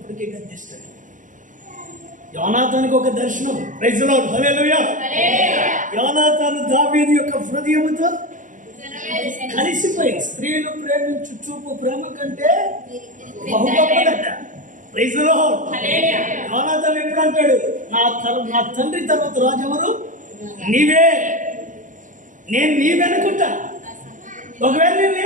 గద్దిస్తాడు. యోనాతానుకి ఒక దర్శనం. ప్రైజ్ ది లార్డ్, హల్లెలూయా. యోనాతాను దావీదు యొక్క హృదయముతో కలిసిపోయి, స్త్రీలు ప్రేమించు చూపు ప్రేమ కంటే బహు గొప్పదట. Praise the lord. యోనాతాను ఎప్పుడు అంటాడు, నా తండ్రి తర్వాత రాజు ఎవరు? నీవే. నేను నీవెనుకుంటా. ఒకవేళ నేను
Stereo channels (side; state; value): left; late; 0.37 ms